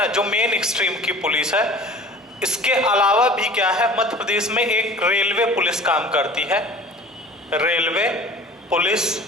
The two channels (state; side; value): normal; both; correlation 0.43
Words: जो मेन स्ट्रीम की पुलिस है, इसके अलावा भी क्या है, मध्य प्रदेश में एक रेलवे पुलिस काम करती है। रेलवे